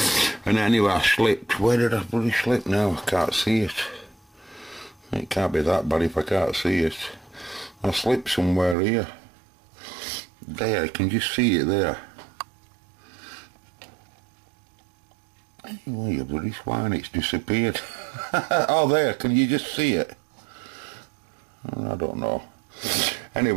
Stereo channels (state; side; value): drops out; left; at 8.8 s